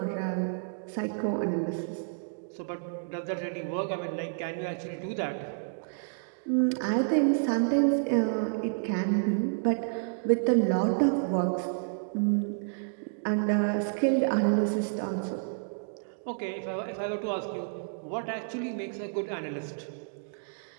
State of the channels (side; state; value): left; silent; digital silence